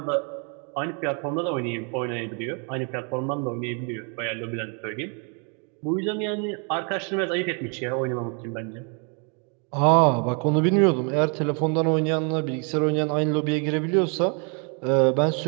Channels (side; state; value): left; quieter; 37.1 dB